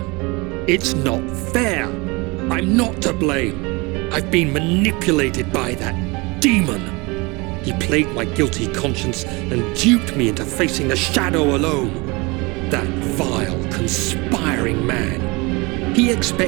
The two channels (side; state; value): left; quieter; 25.9 dB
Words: It's not fair. I'm not to blame. I've been manipulated by that demon. He played my guilty conscience and duped me into facing the shadow alone. That vile, conspiring man. He